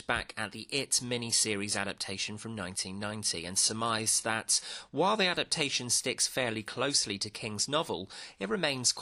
back at the It mini-series adaptation from 1990 and surmised that, while the adaptation sticks fairly closely to King's novel, it remains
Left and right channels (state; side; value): identical; both; correlation 1.00